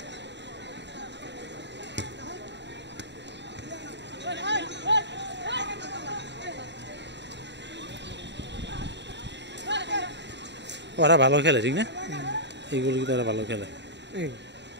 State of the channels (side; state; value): left; late; 0.51 ms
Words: ওরা ভালো খেলে ঠিক না এইগুলো কিন্তু ওরা ভালো খেলে